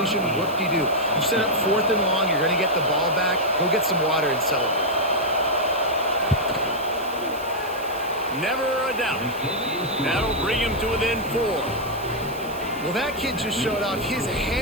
Whoop-de-doo. You set up 4th and long. You're going to get the ball back. Go get some water and celebrate. Never a doubt. That'll bring him to within 4. Well, that kid just showed off his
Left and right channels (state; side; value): noise; right; hiss, 18 dB below the sound